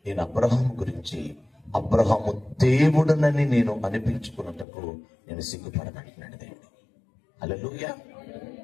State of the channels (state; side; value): drops out; right; at 4.7 s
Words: నేను అబ్రహాం గురించి అబ్రహాము దేవుడునని నేను అనిపించుకున్నటకు నేను సిగ్గుపడనంటున్నాడు దేవుడు. హల్లెలూయా,